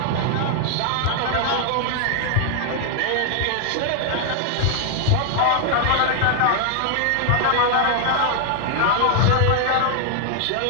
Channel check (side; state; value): both; different; correlation 0.00